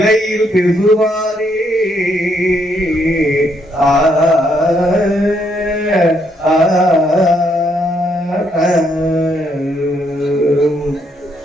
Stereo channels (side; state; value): both; normal; correlation 0.73